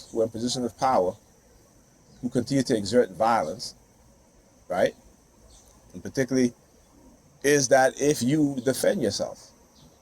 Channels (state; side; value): identical; both; correlation 1.00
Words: who are in position of power, who continue to exert violence, right? And particularly is that if you defend yourself,